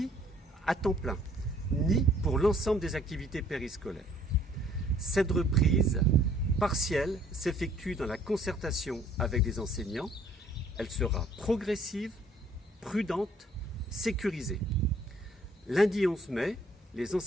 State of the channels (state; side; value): normal; both; correlation 0.60